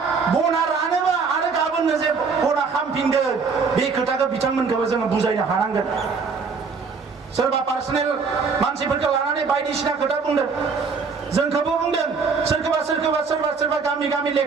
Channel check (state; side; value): quieter; left; 5.1 dB